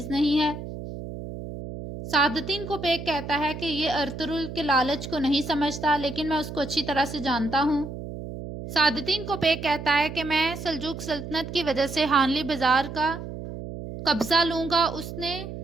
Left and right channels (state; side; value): noise; right; hum, 9 dB below the sound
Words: نہیں ہے۔ سعادتین کو پیک کہتا ہے کہ یہ ارطغرل کے لالچ کو نہیں سمجھتا، لیکن میں اس کو اچھی طرح سے جانتا ہوں۔ سعادتین کو پیک کہتا ہے کہ میں سلجوق سلطنت کی وجہ سے ہانلی بازار کا قبضہ لوں گا، اس نے